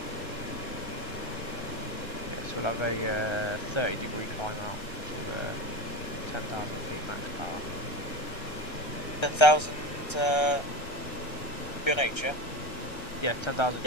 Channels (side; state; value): right; late; 1.3 ms